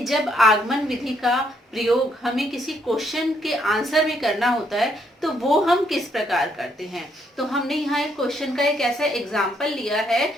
जब आगमन विधि का प्रयोग हमें किसी क्वेश्चन के आंसर में करना होता है तो वो हम किस प्रकार करते हैं। तो हमने यहाँ एक क्वेश्चन का एक ऐसा एग्जाम्पल लिया है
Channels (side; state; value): both; normal; correlation 0.72